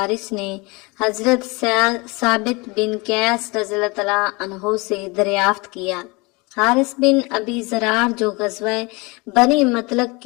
نے حضرت ثابت بن قیس رضی اللہ تعالیٰ عنہ سے دریافت کیا۔ حارث بن ابی ذرار جو غزوہ بنی مطلق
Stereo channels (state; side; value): quieter; right; 26.4 dB